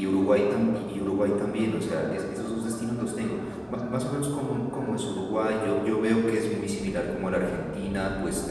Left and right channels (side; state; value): both; identical; correlation 1.00